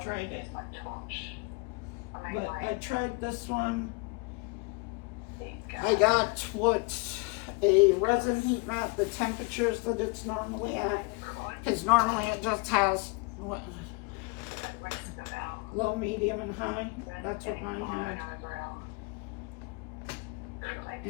tried it. But I tried this one. I got a resin heat mat, the temperatures that it's normally at, because normally it just has low, medium, and high. That's what mine had.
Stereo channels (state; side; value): quieter; right; 27.5 dB